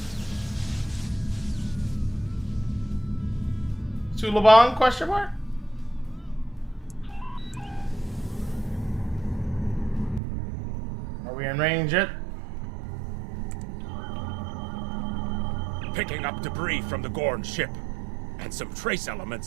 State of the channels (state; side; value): drops out; left; at 10.2 s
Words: Sulaban, question mark? Are we in range yet? Picking up debris from the Gorn ship. And some trace